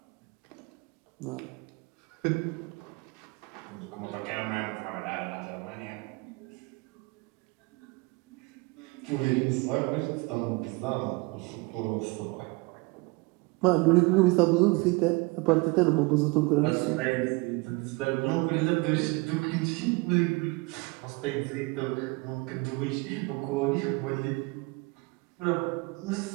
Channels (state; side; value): quieter; left; 26.5 dB